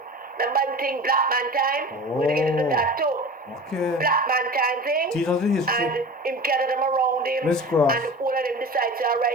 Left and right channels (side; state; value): both; normal; correlation 0.35